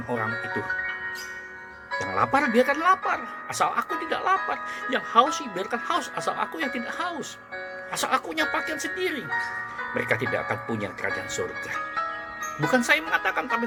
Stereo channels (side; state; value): both; identical; correlation 1.00